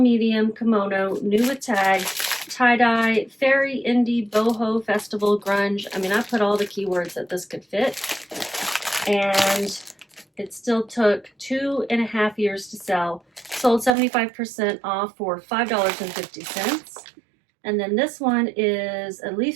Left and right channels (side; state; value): left; drops out; at 14.0 s